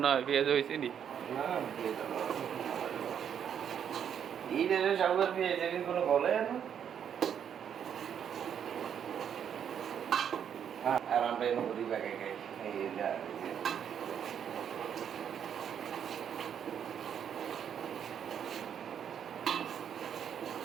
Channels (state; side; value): quieter; left; 8.5 dB